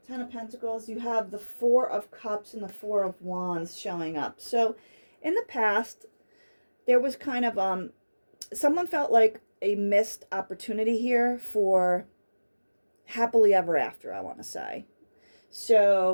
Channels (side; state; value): both; inverted; correlation -1.00